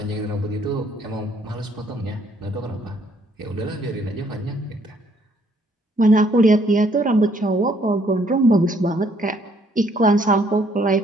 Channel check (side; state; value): both; normal; correlation 0.66